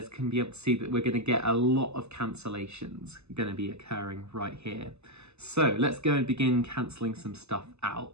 can be able to see that we're going to get a lot of cancellations going to be occurring right here. So let's go and begin cancelling some stuff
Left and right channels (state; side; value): late; left; 0.80 ms